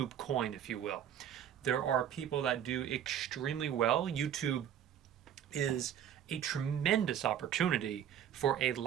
coin, if you will. There are people that do extremely well. YouTube is a tremendous opportunity for a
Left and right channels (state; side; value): quieter; left; 9.6 dB